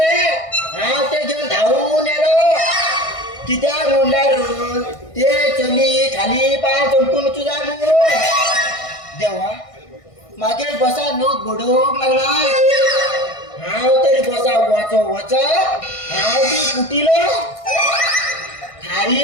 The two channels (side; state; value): right; late; 1.5 ms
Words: हा ते घेऊन धावून येलो कित्याक म्हणल्यार ते चली खाली पाय चमकून तुझा देवा मागे बसा नोट घडोक लागला हांव तरी बसा वच हांव ती कुटिलो